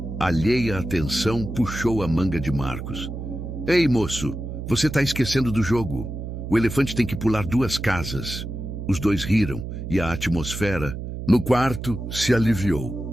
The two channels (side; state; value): right; noise; hum, 7 dB below the sound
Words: alheia à atenção, puxou a manga de Marcos. Ei, moço, você está esquecendo do jogo. O elefante tem que pular 2 casas. Os dois riram e a atmosfera no quarto se aliviou.